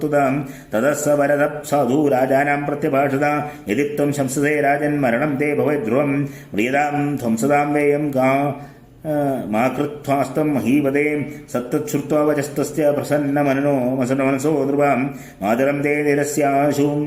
ततः स वरदः साधु राजानां प्रत्यभाषता यदि त्वं शंससे राजन्मरणं ते भवेद्ध्रुवं म्रियतां ध्वंसतां वेयं मा कृत्वास्तं महीपदे सत्तच्छ्रुत्वा वचस्तस्य प्रसन्नमनसो ध्रुवां मातरं ते निरस्याशु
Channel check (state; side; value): identical; both; correlation 1.00